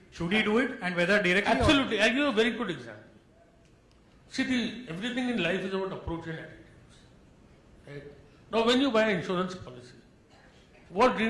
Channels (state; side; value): identical; both; correlation 1.00